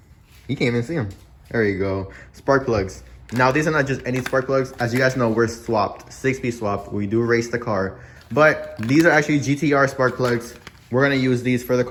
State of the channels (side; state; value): both; identical; correlation 1.00